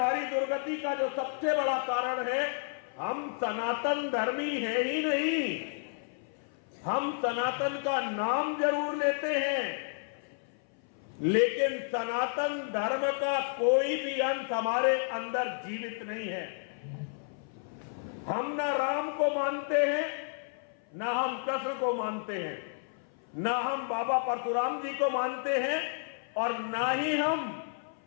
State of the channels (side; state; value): right; silent; 56 dB below the other